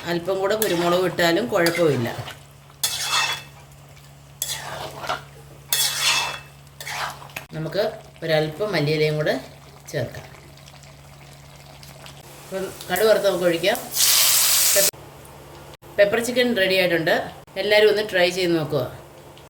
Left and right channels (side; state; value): both; identical; correlation 1.00